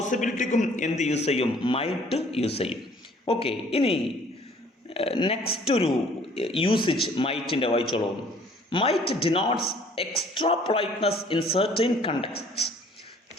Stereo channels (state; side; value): normal; both; correlation 0.56